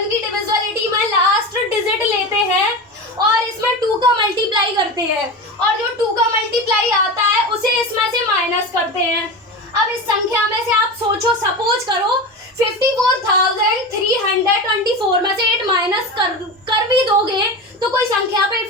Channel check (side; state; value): both; normal; correlation 0.25